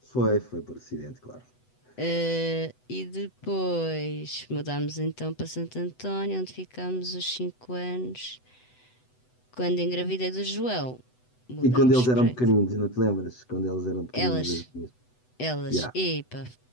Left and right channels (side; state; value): right; late; 8.0 ms